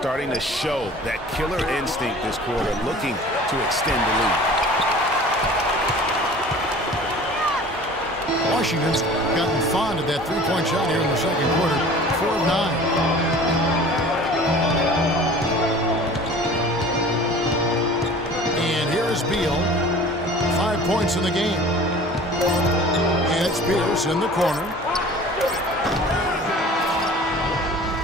to show that killer instinct this quarter, looking to extend the lead. Washington's gotten fond of that three-point shot here in the second quarter. 4 of 9. And here is Beal. 5 points in the game. And it's Pierce in the corner.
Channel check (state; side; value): normal; both; correlation 0.44